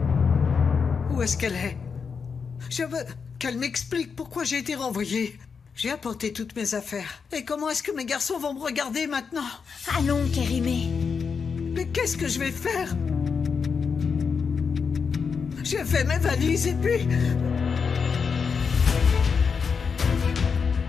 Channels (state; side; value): quieter; right; 5.8 dB